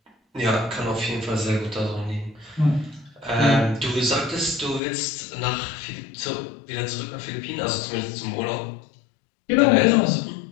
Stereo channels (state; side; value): drops out; right; at 4.8 s